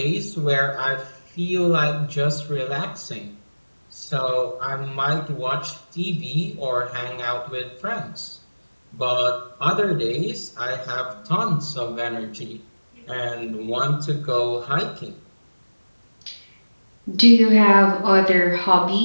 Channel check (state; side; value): inverted; both; correlation -1.00